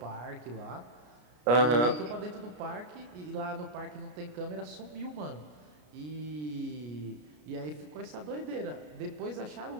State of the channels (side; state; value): left; late; 33 ms